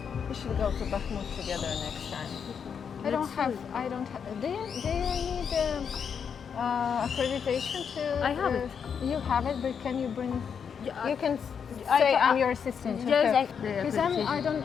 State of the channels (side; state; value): right; quieter; 7.0 dB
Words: We should go to Bakhmut together next time. I don't have. Do you need accreditation to? I have it. You have it, but can you bring? You can say I'm your assistant. Yes, because I